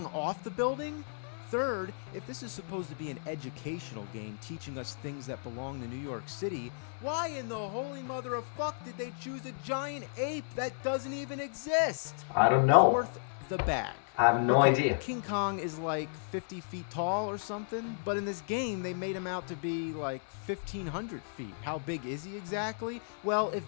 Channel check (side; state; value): right; silent; 55 dB below the other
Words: off the building? Third, if this is supposed to be an educational game teaching us things that belong to New York City, why in the holy mother of fuck did they choose a giant ape that doesn't even exist? I don't know. Fourth, the bag. I have no Okay, idea. King Kong is like 50 feet tall or something, but in this game they made him out to be like 1,500 feet. How big is he exactly? Well, if